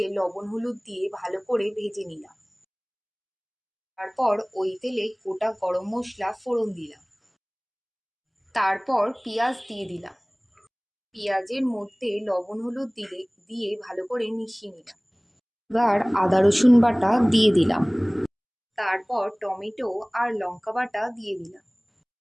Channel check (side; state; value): both; identical; correlation 1.00